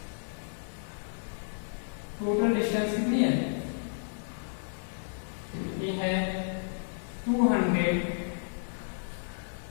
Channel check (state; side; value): silent; right; digital silence